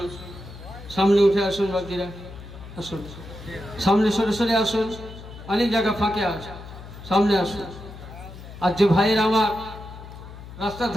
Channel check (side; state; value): left; noise; hum, 14 dB below the sound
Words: সামনে উঠে আসুন, বাকিরা আসুন, সামনে সরে সরে আসুন, অনেক জায়গা ফাঁকে আসুন, সামনে আসুন। আর যে ভাইয়ের আমার রাস্তার